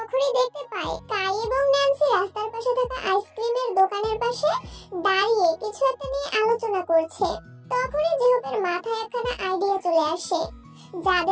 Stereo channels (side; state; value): both; identical; correlation 1.00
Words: দেখতে পায় কাই এবং ন্যান্সি রাস্তার পাশে থাকা আইসক্রিমের দোকানের পাশে দাঁড়িয়ে কিছু একটা নিয়ে আলোচনা করছে। তখনই জেহুপের মাথায় একখানা আইডিয়া চলে আসে।